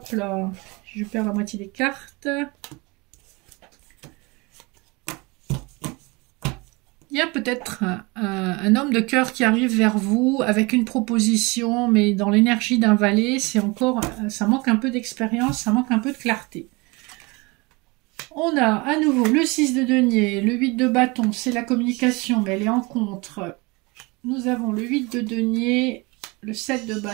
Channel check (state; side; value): quieter; left; 26.1 dB